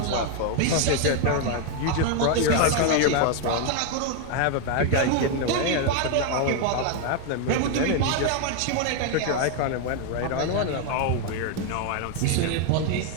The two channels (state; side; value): different; both; correlation 0.01